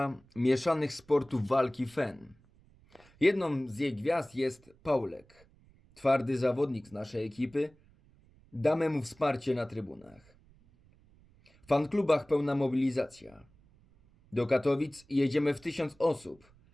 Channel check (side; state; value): right; noise; rumble, 29 dB below the sound